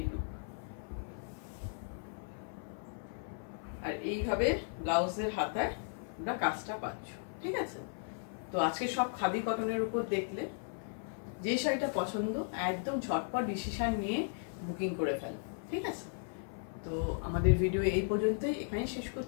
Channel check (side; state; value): right; silent; 54 dB below the other